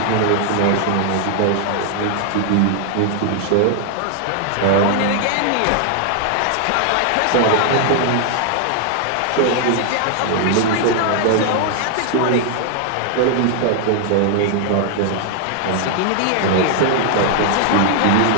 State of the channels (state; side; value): different; both; correlation 0.00